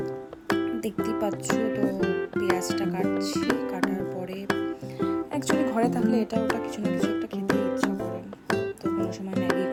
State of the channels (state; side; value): identical; both; correlation 1.00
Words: দেখতেই পাচ্ছ, তো পেঁয়াজটা কাটছি। কাটার পরে অ্যাকচুয়ালি ঘরে থাকলে এটা ওটা কিছু না কিছু